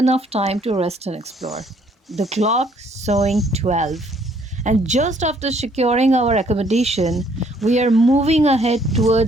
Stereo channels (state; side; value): normal; both; correlation 0.64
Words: time to rest and explore. The clock showing 12. And just after securing our accommodation, we are moving ahead